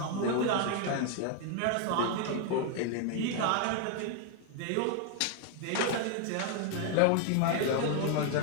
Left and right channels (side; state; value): both; different; correlation 0.00